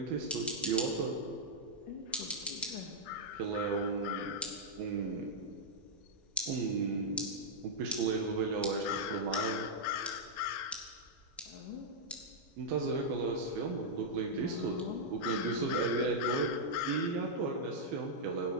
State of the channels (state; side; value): normal; both; correlation -0.07